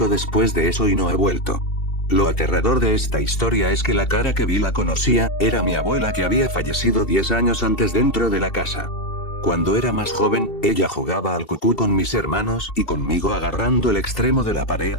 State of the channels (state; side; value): late; right; 2.7 ms